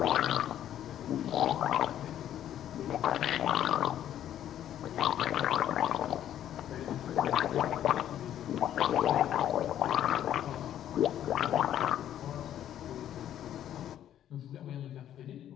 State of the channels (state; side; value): quieter; right; 11.0 dB